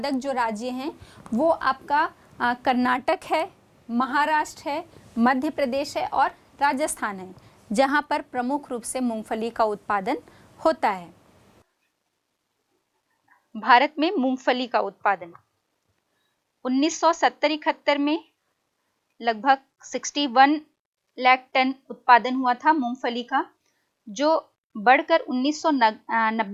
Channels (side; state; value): both; identical; correlation 1.00